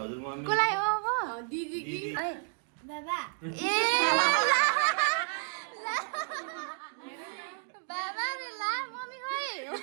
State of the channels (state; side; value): silent; left; 57 dB below the other